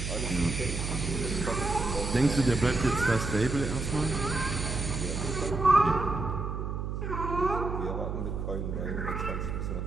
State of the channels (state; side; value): noise; right; hum, 3 dB below the sound